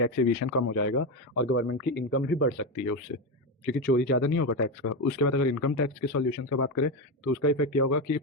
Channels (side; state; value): both; normal; correlation 0.13